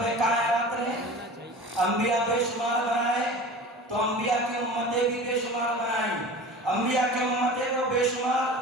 کائنات نے انبیاء بے شمار بنائے تو انبیاء کی امتیں بھی بے شمار بنائیں، انبیاء کی امتیں تو بے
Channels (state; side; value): normal; both; correlation 0.37